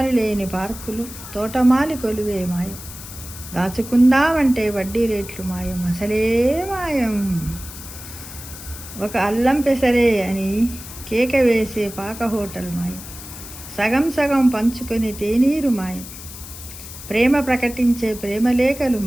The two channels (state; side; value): noise; left; hiss, 13 dB below the sound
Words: లేని పార్కులు, తోటమాలి కొలువే మాయం, దాచుకుందామంటే వడ్డీ రేట్లు మాయం, అసలే మాయం, ఒక అల్లం పెసరే అని కేక వేసే పాక హోటల్ మాయం, సగం సగం పంచుకొని తేనీరు మాయం, ప్రేమ ప్రకటించే ప్రేమలేఖలు